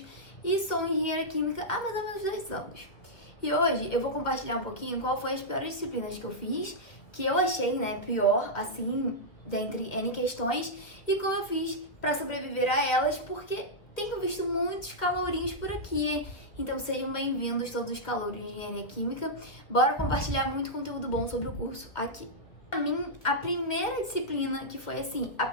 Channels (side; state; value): right; late; 1.8 ms